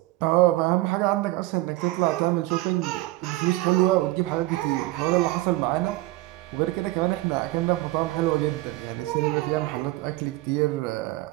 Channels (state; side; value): quieter; left; 18.7 dB